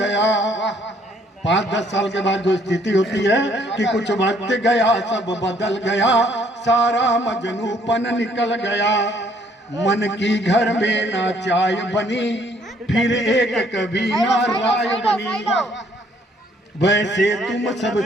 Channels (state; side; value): normal; both; correlation 0.64